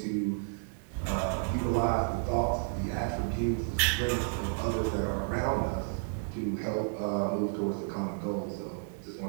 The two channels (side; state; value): left; silent; digital silence